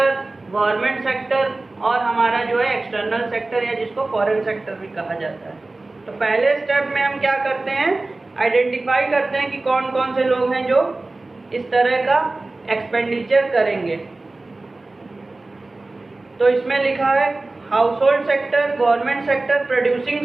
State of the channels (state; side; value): quieter; left; 3.1 dB